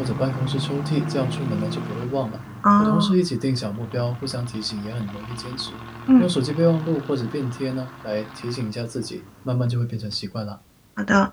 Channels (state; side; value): identical; both; correlation 1.00